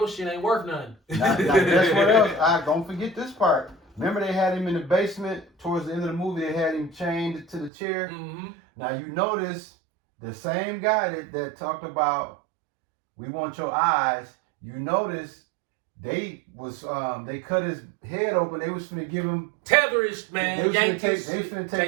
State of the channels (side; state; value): left; drops out; at 7.7 s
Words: shit ain't worth nothing. Now, guess what else? Don't forget this part. Remember they had him in the basement towards the end of the movie. They had him chained to the chair. Mm-hmm. Now you notice the same guy that talked about we want your eyes. You notice they cut his head open. They was finna give him tetherish, man. They finna